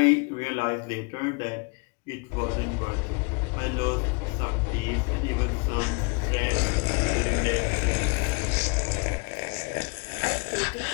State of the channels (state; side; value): quieter; right; 31.7 dB